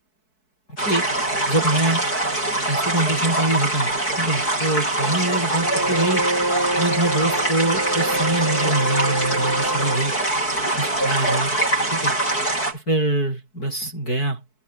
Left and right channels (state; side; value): late; right; 4.6 ms